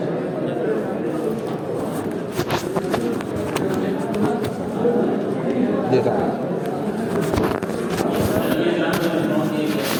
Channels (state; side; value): identical; both; correlation 1.00